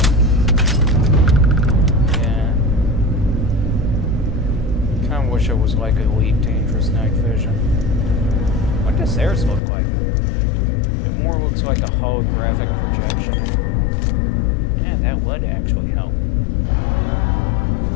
Yeah. Kinda wish it was like Elite Dangerous Night Vision. What does theirs look like? It more looks like a holographic projection. Yeah, that would actually help.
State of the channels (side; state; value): right; drops out; at 9.6 s